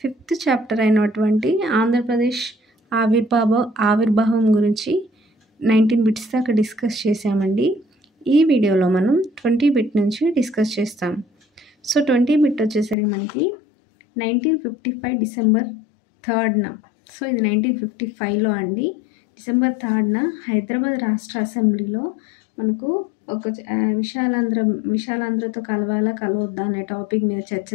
5th chapter అయినటువంటి ఆంధ్రప్రదేశ్ ఆవిర్భావం గురించి 19 బిట్స్ దాకా డిస్కస్ చేసామండి. ఈ వీడియోలో మనం 20 బిట్ నుంచి డిస్కస్ చేస్తాం. సో 20 బిట్ వచ్చేసరికి మనకి 1955 డిసెంబర్ 3న, సో ఇది 1955లో అండి. డిసెంబర్ 3న హైదరాబాద్ రాష్ట్ర అసెంబ్లీలో మనకు ఒక విశాలాంధ్రతో కలవద్దా అనే టాపిక్ మీద చర్చ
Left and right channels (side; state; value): right; drops out; at 13.0 s